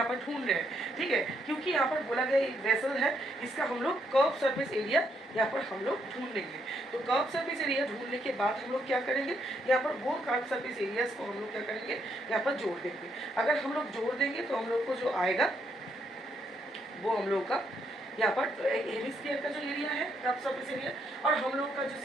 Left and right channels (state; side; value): normal; both; correlation 0.75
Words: पर ढूंढ रहे हैं, ठीक है, क्योंकि यहाँ पर बोला गया वेसल सिंपल है, इसका हम लोग कर्व सरफेस एरिया यहाँ पर हम लोग ढूंढ लेंगे। तो कर्व सरफेस एरिया ढूंढने के बाद हम लोग क्या करेंगे, यहाँ पर वो कर्व सरफेस एरियाज को हम लोग क्या करेंगे, यहाँ पर जोड़ देंगे। अगर हम लोग जोड़ देंगे तो हम लोग को जो आएगा वो हम लोग का यहाँ पर हेमिस्फीयर का जो एरिया है कप सरफेस एरिया और हम लोग का जो